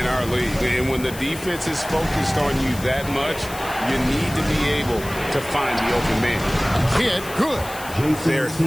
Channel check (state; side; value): noise; left; hiss, 14 dB below the sound